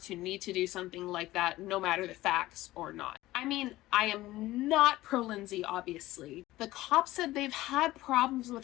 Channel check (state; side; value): quieter; right; 17.0 dB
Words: to do something like that, no matter the facts or not. I mean, I am not pro Lindsay, obviously. The cops said they've had problems